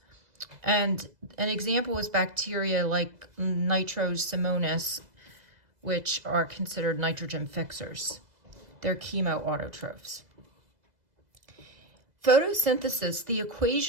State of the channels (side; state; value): left; late; 2.0 ms